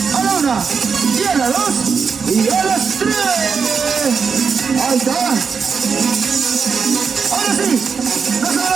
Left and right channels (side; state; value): left; quieter; 5.8 dB